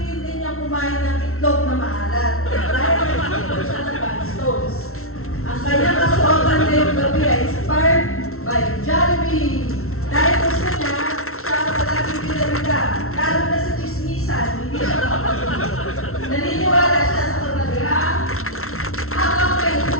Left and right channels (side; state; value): right; late; 0.62 ms